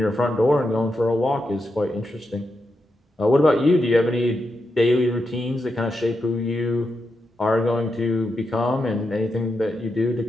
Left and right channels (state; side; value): normal; both; correlation 0.86